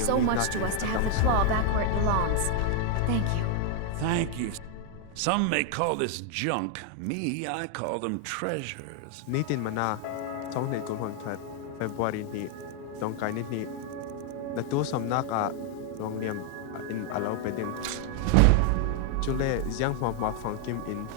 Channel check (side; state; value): both; different; correlation 0.00